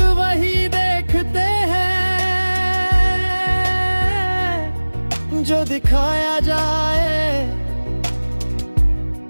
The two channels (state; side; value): inverted; both; correlation -1.00